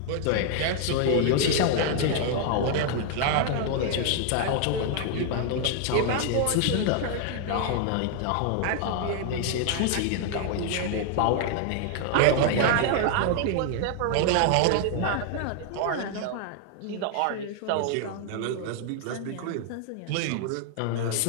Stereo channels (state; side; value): different; both; correlation 0.00